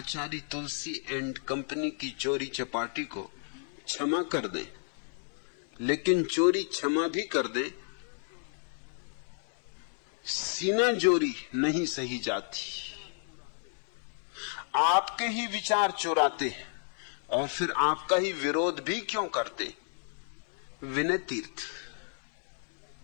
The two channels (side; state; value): right; silent; 57 dB below the other